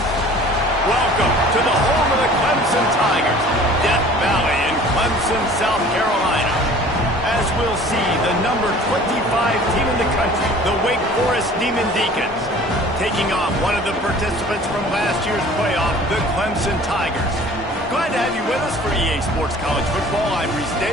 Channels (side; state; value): both; normal; correlation 0.48